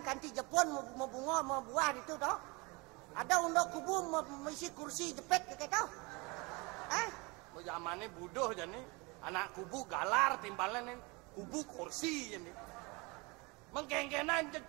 kanti Jepun mau bunga mau buah itu toh. Ada untuk kubu misi kursi jepit kayak tau. Zamannya budoh jadi anak kubu galar timbalan kubu kursi jadi. Mengkengkenan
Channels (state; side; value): quieter; left; 27.2 dB